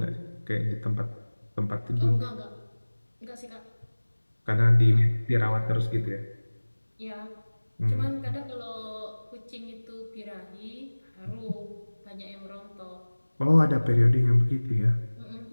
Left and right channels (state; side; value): inverted; both; correlation -1.00